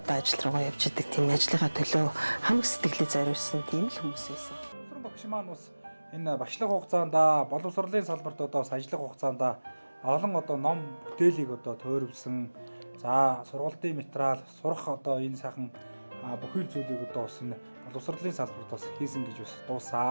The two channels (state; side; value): inverted; both; correlation -1.00